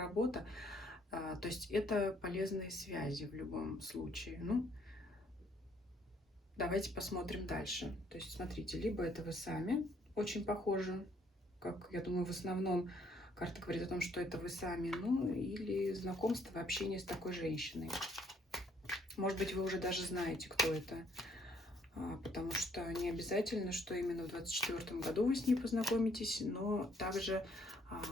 То есть это полезные связи в любом случае. Ну, давайте посмотрим дальше. То есть смотрите, либо это вы сами очень похожи, как я думаю, в основном карта говорит о том, что это вы сами, ну, или знакомство, общение с такой женщиной. Может быть, вы уже даже знаете, кто это, потому что не обязательно, что именно в 2024 году вы с ней познакомитесь, но также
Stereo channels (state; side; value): normal; both; correlation 0.66